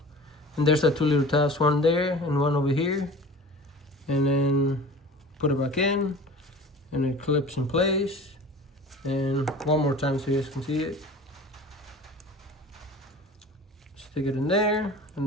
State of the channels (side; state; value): both; normal; correlation 0.40